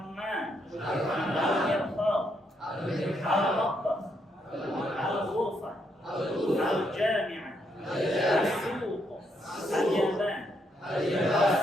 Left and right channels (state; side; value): normal; both; correlation 0.76